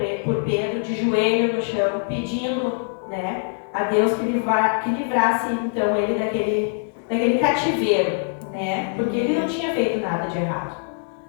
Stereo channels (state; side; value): silent; right; digital silence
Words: de joelho no chão, pedindo, né, a Deus que livrasse então ele daquele cativeiro, né, porque ele não tinha feito nada de errado.